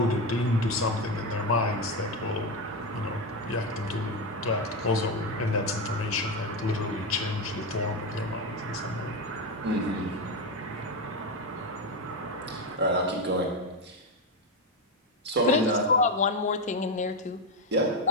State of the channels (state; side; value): normal; both; correlation 0.12